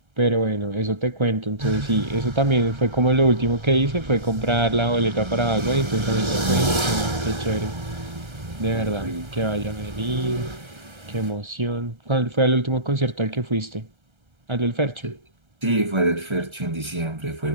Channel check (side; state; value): left; late; 1.3 ms